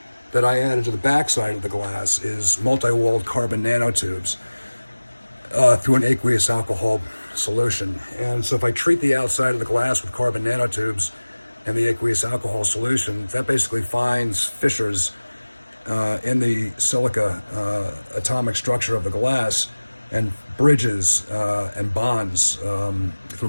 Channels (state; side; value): inverted; both; correlation -1.00